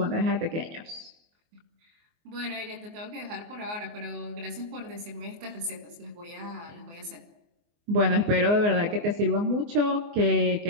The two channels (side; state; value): left; late; 24 ms